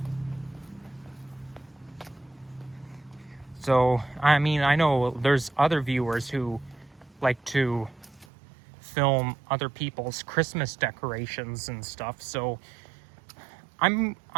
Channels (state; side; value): drops out; left; at 8.2 s